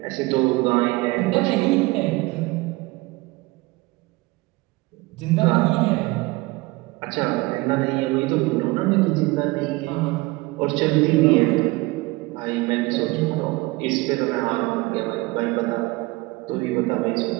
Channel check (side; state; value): left; quieter; 22.3 dB